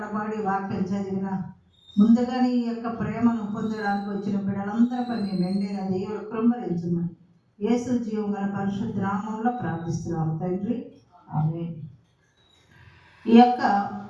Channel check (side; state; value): both; identical; correlation 1.00